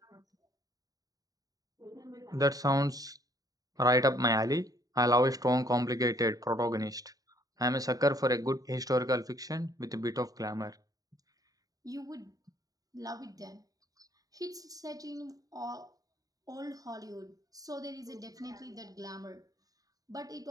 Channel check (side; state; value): left; late; 0.18 ms